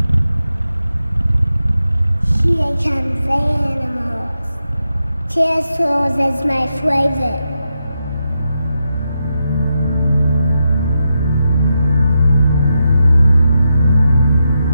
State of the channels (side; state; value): both; inverted; correlation -0.86